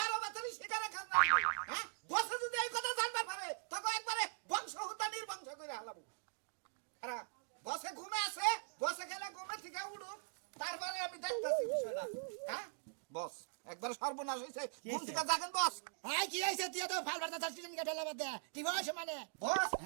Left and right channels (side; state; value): left; silent; digital silence